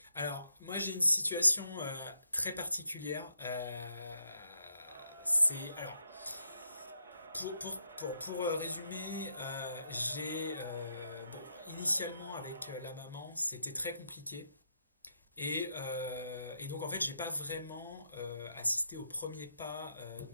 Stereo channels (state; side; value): inverted; both; correlation -0.79